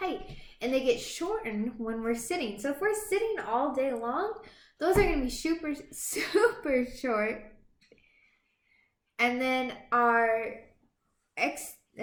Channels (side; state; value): both; identical; correlation 1.00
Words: and they get shortened when we're sitting. So if we're sitting all day long, those are going to be super, super short. And then